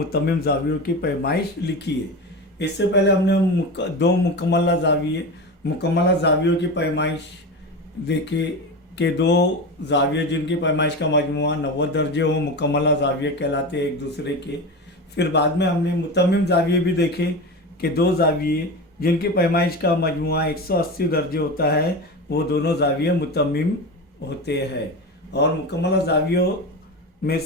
जावियों की पैमाइश लिखिए। इससे पहले हमने दो मुकम्मला जावियों की पैमाइश देखी कि दो जाविये जिनकी पैमाइश का मजमुआ 90 दर्जे हो मुकम्मला जाविये कहलाते एक दूसरे के। फिर बाद में हमने मुतम्मिम जाविये भी देखे कि दो जाविये जिनकी पैमाइश का मजमुआ 180 दर्जे होता है वो दोनों जाविये मुतम्मिम होते हैं। और मुकम्मला जावियों में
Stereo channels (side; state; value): both; normal; correlation 0.25